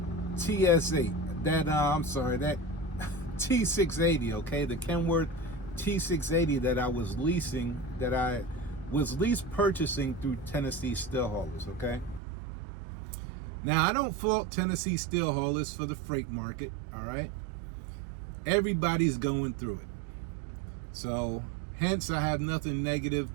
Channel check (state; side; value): drops out; left; at 12.2 s